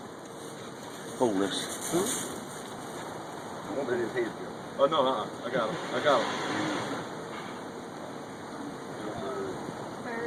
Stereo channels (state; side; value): identical; both; correlation 1.00